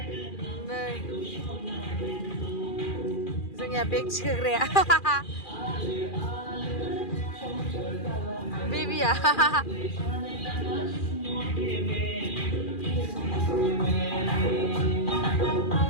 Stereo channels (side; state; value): right; late; 2.4 ms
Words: नै जोंनिया बेग थिखोग्राया बेबिया